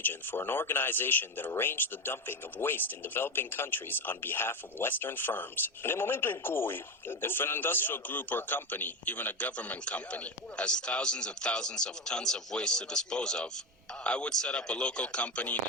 for an organization that arranged the dumping of waste in developing countries on behalf of Western firms. If an industrial group or company, even a government company, has thousands and thousands of tons of waste to dispose of, I would set up a local company in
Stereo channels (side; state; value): both; normal; correlation 0.16